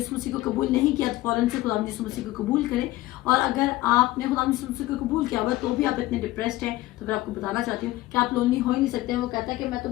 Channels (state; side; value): quieter; right; 17.4 dB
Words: मसीह को कबूल नहीं किया तो फौरन से खुदावंद यीशु मसीह को कबूल करें। और अगर आपने खुदावंद यीशु मसीह को कबूल किया हुआ तो भी आप इतने डिप्रेस्ड हैं, तो फिर आपको बताना चाहती हूँ कि आप लोनली हो ही नहीं सकते हैं। वो कहता है कि मैं